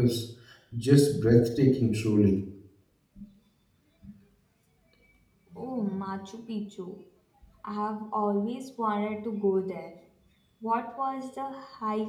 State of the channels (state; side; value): identical; both; correlation 1.00